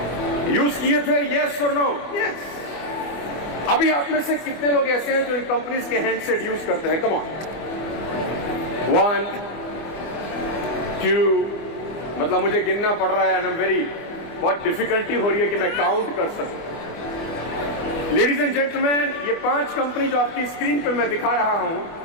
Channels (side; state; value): right; late; 25 ms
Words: यूज किए थे? यस और नो? यस. अभी आप में से कितने लोग ऐसे हैं जो इन कंपनीज के हैंडसेट यूज करते हैं? Come on. 1, 2, मतलब मुझे गिनना पड़ रहा है. बहुत डिफिकल्टी हो रही है कि मैं काउंट कर सकूं. लेडीज एंड जेंटलमैन, ये 5 कंपनी जो आपकी स्क्रीन पे मैं दिखा रहा हूं,